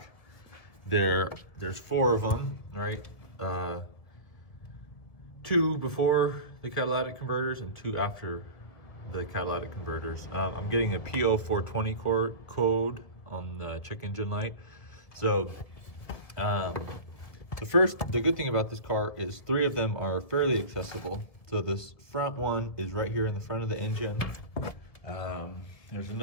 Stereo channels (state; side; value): late; right; 1.7 ms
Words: there's 4 of them, right? 2 before the catalytic converters and 2 after the catalytic converters. I'm getting a PO420 code on the check engine light. So the good thing about this car is 3 of them are fairly accessible. So this front one is right here in the front of the engine. There's